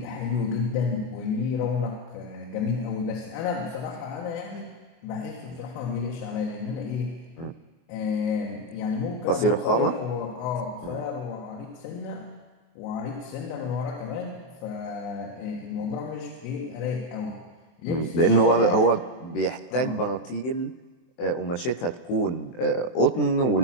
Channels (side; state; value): right; late; 24 ms